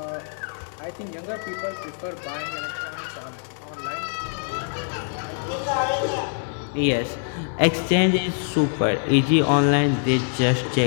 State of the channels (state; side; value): silent; right; digital silence